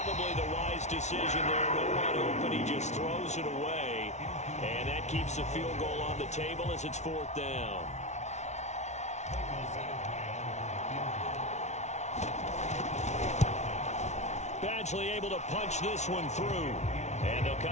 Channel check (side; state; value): right; late; 0.32 ms